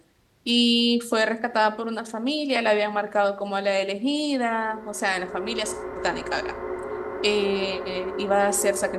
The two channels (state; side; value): identical; both; correlation 1.00